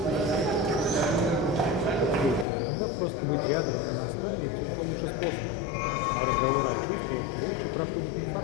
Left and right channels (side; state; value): right; drops out; at 2.5 s